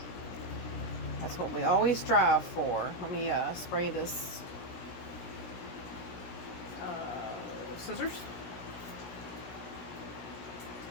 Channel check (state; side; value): late; right; 17 ms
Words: That's what we always strive for. Let me spray this scissors.